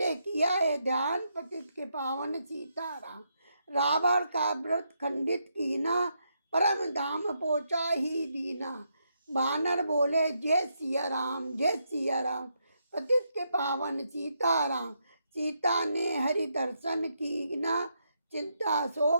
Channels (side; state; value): both; inverted; correlation -0.80